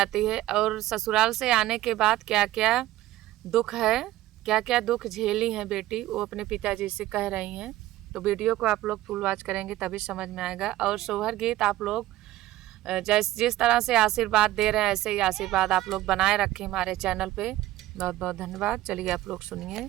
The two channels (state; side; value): quieter; left; 15.6 dB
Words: है और ससुराल से आने के बाद क्या क्या दुख है, क्या क्या दुख झेली हैं बेटी, वो अपने पिताजी से कह रही हैं। तो वीडियो को आप लोग फुल वॉच करेंगे तभी समझ में आएगा। और सोहर गीत आप लोग जिस तरह से आशीर्वाद दे रहे हैं ऐसे ही आशीर्वाद आप लोग बनाए रखें हमारे चैनल पे। बहुत बहुत धन्यवाद। चलिए आप लोग सुनिए